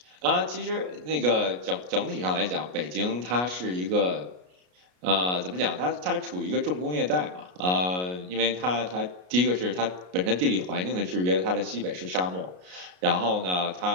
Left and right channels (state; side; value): late; left; 33 ms